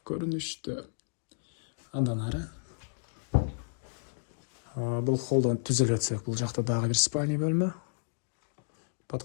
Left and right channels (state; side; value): silent; right; digital silence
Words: көрүнүштө. Андан ары бул холлдон түзөлүп өтсөк, бул жакта дагы бир спальный бөлмө.